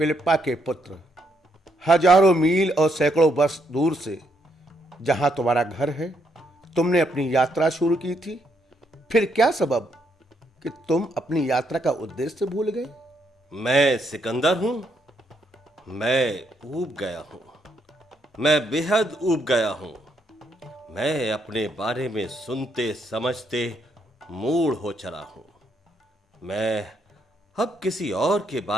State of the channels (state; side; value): normal; both; correlation 0.75